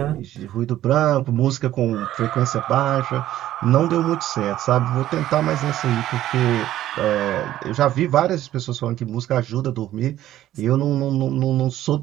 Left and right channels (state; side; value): quieter; left; 13.3 dB